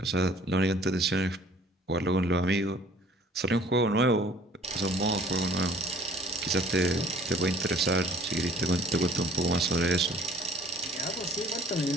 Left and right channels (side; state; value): both; normal; correlation 0.53